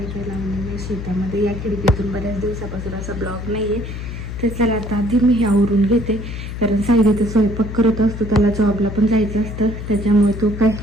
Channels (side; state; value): left; noise; hum, 7 dB below the sound